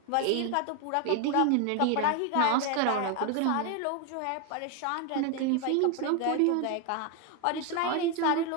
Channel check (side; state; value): both; different; correlation 0.01